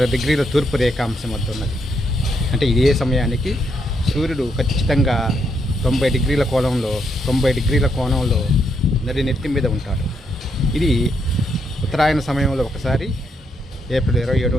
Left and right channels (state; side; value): normal; both; correlation 0.77